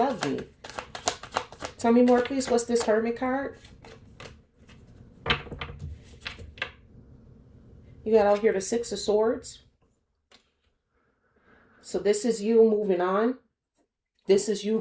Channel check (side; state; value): both; identical; correlation 1.00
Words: me. Tell me more, please. What's this Hermit card? You got out here the Six of Swords. So this is you moving on. This is you